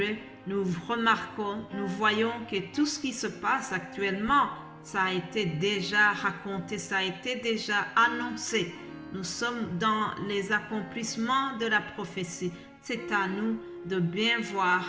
nous remarquons, nous voyons que tout ce qui se passe actuellement, ça a été déjà raconté, ça a été déjà annoncé. Nous sommes dans les accomplissements de la prophétie. C'est à nous de bien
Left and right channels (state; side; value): identical; both; correlation 1.00